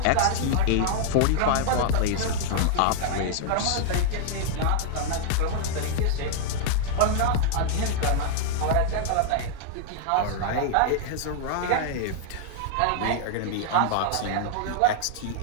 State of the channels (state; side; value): different; both; correlation 0.00